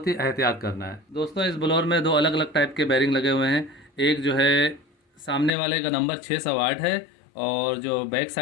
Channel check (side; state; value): right; drops out; at 5.5 s